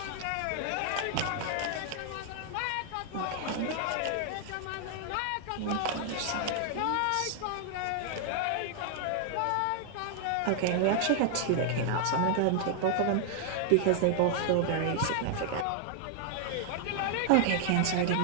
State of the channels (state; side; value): different; both; correlation 0.00